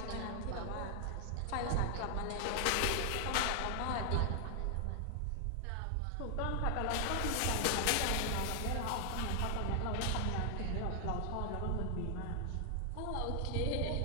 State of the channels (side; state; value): both; different; correlation 0.00